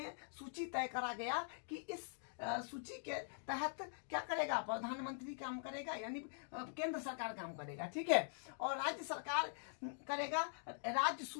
सूची तय करा गया कि इस सूची के तहत क्या करेगा, प्रधानमंत्री काम करेगा, यानी केंद्र सरकार काम करेगा, ठीक है। और राज्य सरकार करेगा राज्य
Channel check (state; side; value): silent; right; digital silence